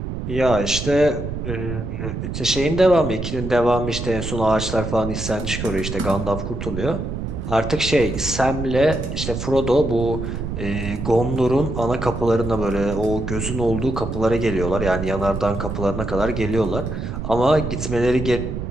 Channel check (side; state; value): right; noise; rumble, 5 dB below the sound